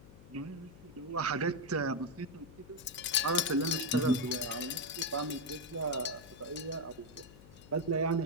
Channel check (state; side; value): noise; left; hum, 19 dB below the sound